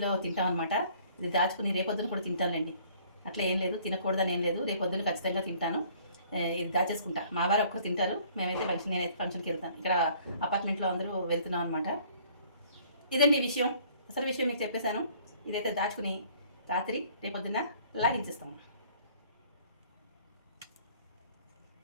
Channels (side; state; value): both; inverted; correlation -0.57